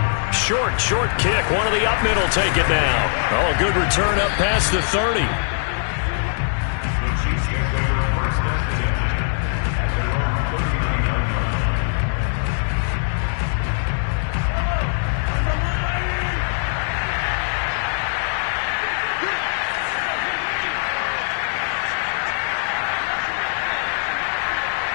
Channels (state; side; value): silent; right; 65 dB below the other